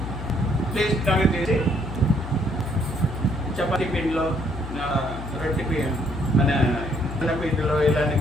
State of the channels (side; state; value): left; noise; hum, 9 dB below the sound